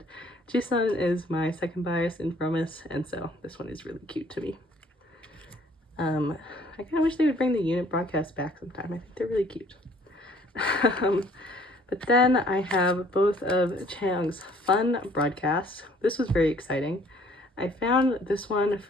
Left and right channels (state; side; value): normal; both; correlation 0.58